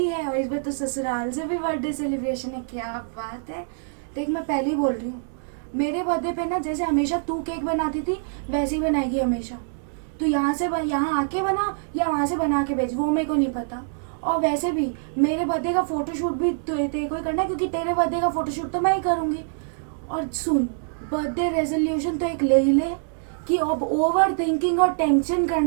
है, और इस बार तो ससुराल से भी बर्थडे सेलिब्रेशन है। क्या बात है। देख मैं पहले ही बोल रही हूँ, मेरे बर्थडे पे ना जैसे हमेशा तू केक बनाती थी वैसे ही बनाएगी हमेशा। तू यहाँ आके बना या वहाँ से बना के भेज, वो मेरे को नहीं पता। और वैसे भी मेरे बर्थडे का फोटोशूट भी तेरे को ही करना है, क्योंकि तेरे बर्थडे का फोटोशूट तो मैं ही करूँगी। और सुन, बर्थडे रेजोल्यूशन तो एक ले ही ले कि अब ओवर थिंकिंग और टेंशन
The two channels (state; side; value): silent; left; digital silence